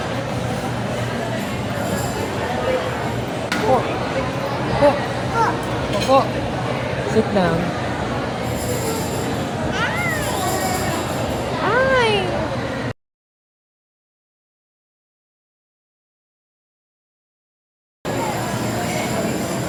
Oh. Oh. Oh. Sit down.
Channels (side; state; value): both; identical; correlation 1.00